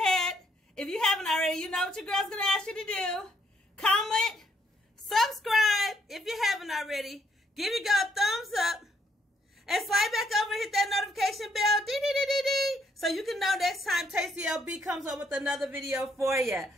If you haven't already, you know what your girl's going to ask you to do. Comment, subscribe if you haven't already. Give your girl a thumbs up. And slide back over and hit that notification bell. Dee-dee-dee-dee-dee. So you can know next time Tasty LB comes up with another video for you.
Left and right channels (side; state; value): both; normal; correlation 0.71